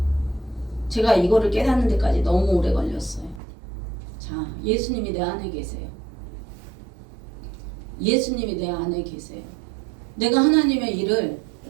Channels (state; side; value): drops out; left; at 3.4 s